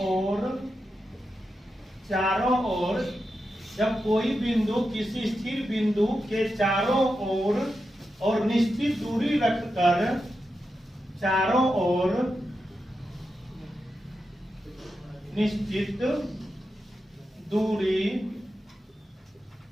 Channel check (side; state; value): both; normal; correlation 0.88